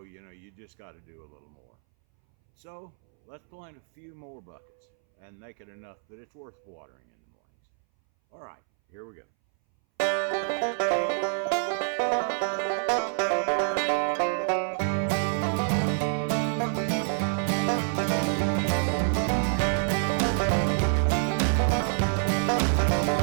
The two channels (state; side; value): silent; left; 60 dB below the other